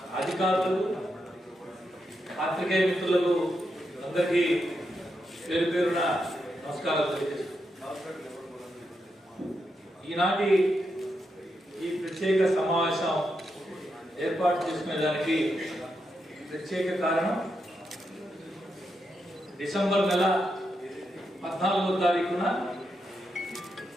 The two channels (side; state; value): both; normal; correlation 0.84